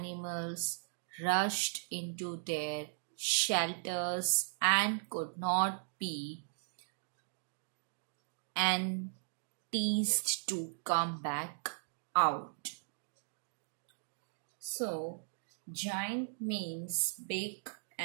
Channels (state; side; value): silent; left; digital silence